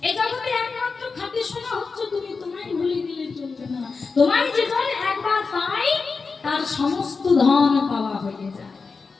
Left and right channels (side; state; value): right; quieter; 4.6 dB